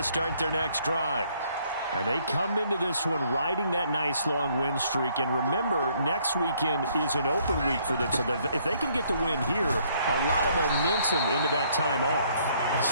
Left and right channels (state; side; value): inverted; both; correlation -0.66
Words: start their next drive. And they come into this one riding that nice long win streak. And remember, next weekend is an open week for them. So if they can get the win here, a lot of momentum into that time off. It